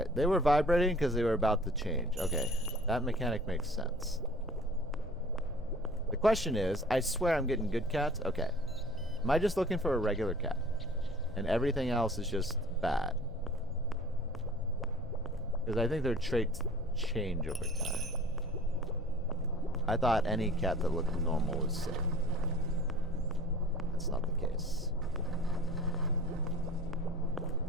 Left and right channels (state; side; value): normal; both; correlation 0.46